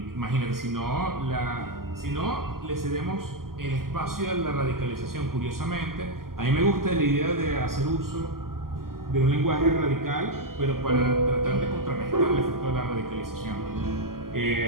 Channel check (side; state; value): left; late; 0.92 ms